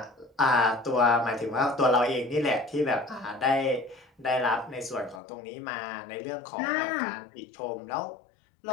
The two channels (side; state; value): right; drops out; at 5.2 s